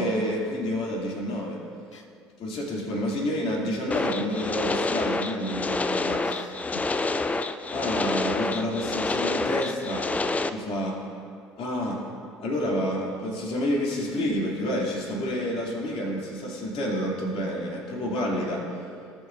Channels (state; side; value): normal; both; correlation 0.57